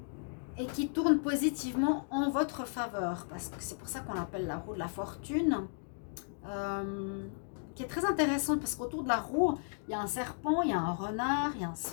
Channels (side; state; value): right; silent; digital silence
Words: Et qui tourne positivement en votre faveur. Parce que c'est pour ça qu'on l'appelle la roue de la fortune. Qui est très intéressante parce qu'autour de la roue, il y a un serpent, il y a un renard, il y a un